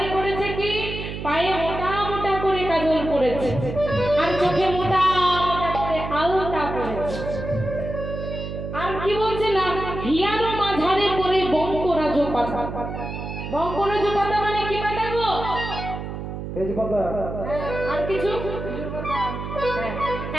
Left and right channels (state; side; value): noise; right; hum, 7 dB below the sound